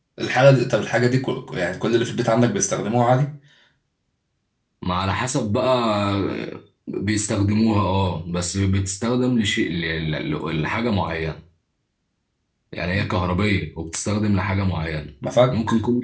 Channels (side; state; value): both; identical; correlation 1.00